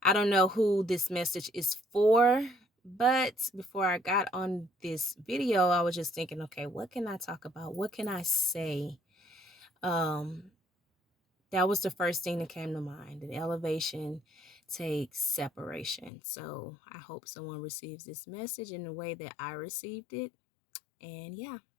I don't know who this message is for, but before I got on this video, I was just thinking, okay, what can I talk about? What can I say? Um, that was the first thing that came to mind. That elevation takes separation. So I hope someone receives this message in the way that I received it. And yeah,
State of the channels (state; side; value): drops out; right; at 16.1 s